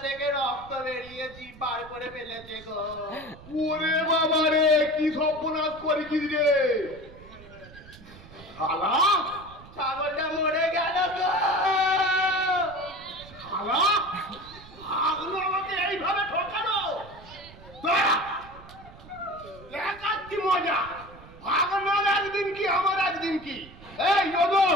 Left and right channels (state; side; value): noise; right; rumble, 20 dB below the sound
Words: থেকে রক্ত বেরিয়েছি বার করে ফেলেছে গো ওরে বাবা রে কি সর্বনাশ করেছিস রে শালা ছাগলটা মরে গেল গো শালা আগলো আমাকে এইভাবে ঠকানো দাঁড়া, দেখাচ্ছি মজা ভাগনার একদিন কি আমার একদিন কি এই যোদো